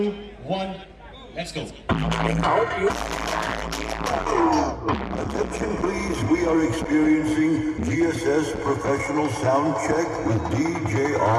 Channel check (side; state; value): both; identical; correlation 1.00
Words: let's go. Attention please, we are experiencing GSS professional sound check with